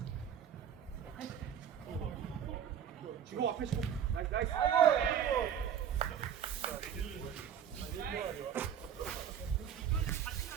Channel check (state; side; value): quieter; left; 8.7 dB